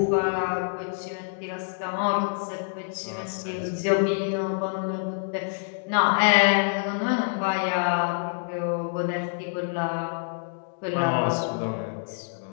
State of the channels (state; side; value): silent; right; digital silence